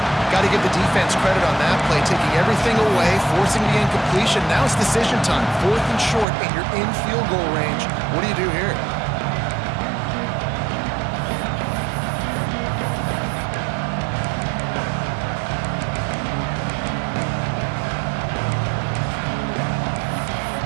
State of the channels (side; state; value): left; drops out; at 6.2 s